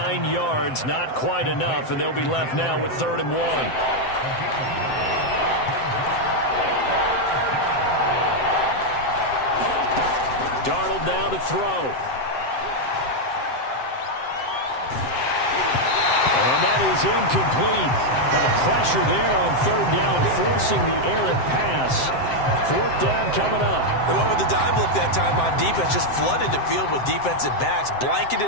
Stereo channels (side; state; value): right; late; 7.7 ms